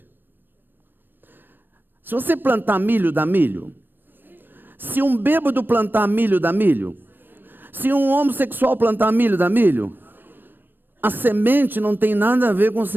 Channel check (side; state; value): left; late; 0.094 ms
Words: Se você plantar milho, dá milho. Se um bêbado plantar milho, dá milho. Se um homossexual plantar milho, dá milho. A semente não tem nada a ver com o